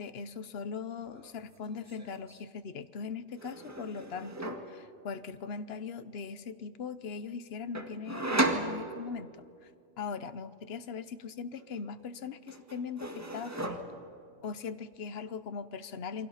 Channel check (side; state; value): both; normal; correlation -0.06